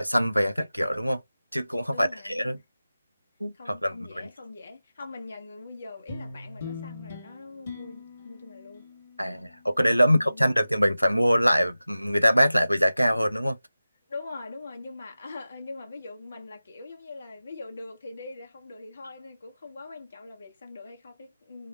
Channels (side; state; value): both; inverted; correlation -0.95